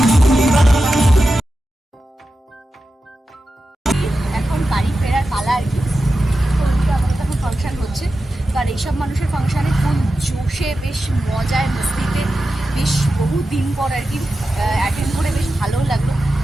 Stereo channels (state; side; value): normal; both; correlation 0.92